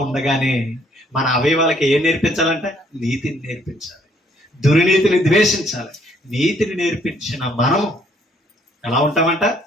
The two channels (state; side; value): normal; both; correlation 0.66